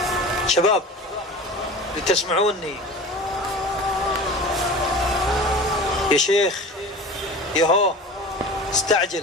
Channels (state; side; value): normal; both; correlation 0.35